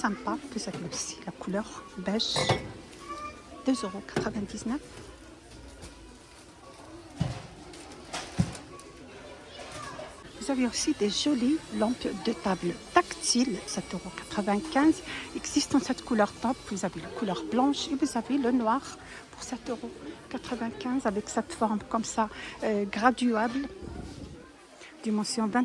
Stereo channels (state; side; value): identical; both; correlation 1.00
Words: Vous avez aussi la couleur beige, 2,99 €. Vous avez aussi des jolies lampes de table tactiles, 7,95 €. Existe en cette couleur top. Vous avez la couleur blanche et vous avez le noir pour 7,95 € avec cette forme comme ça graduable. Dimension